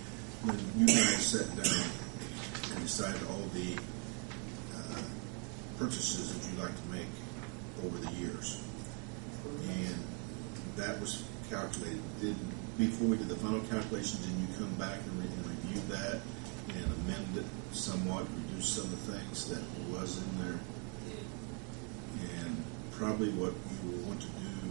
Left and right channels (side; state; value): left; quieter; 35.4 dB